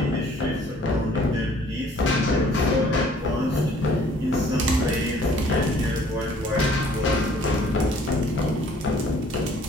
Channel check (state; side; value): normal; both; correlation 0.57